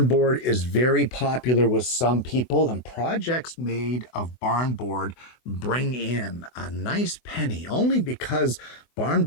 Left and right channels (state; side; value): late; right; 24 ms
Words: board is very popular with some people, and projects made of barn board bring in a nice penny only because barn